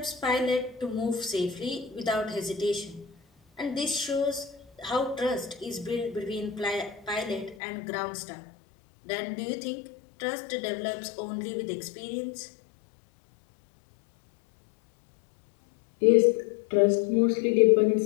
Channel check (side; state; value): right; drops out; at 7.6 s